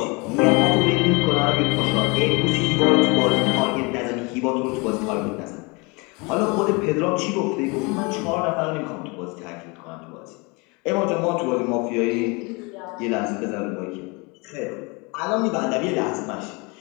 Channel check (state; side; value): quieter; right; 28.5 dB